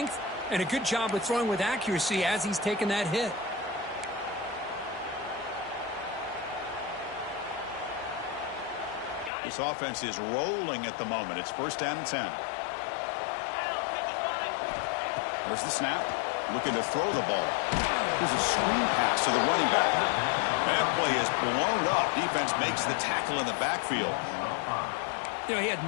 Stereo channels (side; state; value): right; drops out; at 9.3 s